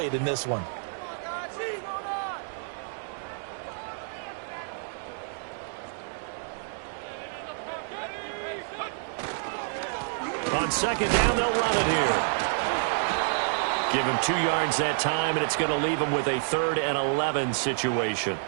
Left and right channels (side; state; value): left; silent; digital silence